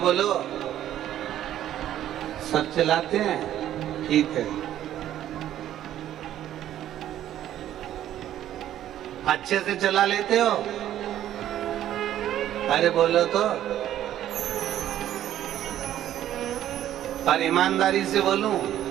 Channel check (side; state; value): left; quieter; 11.9 dB